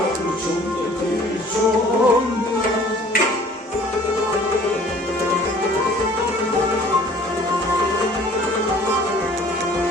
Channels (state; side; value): normal; both; correlation 0.52